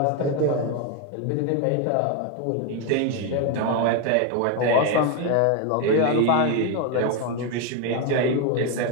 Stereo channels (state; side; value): different; both; correlation 0.02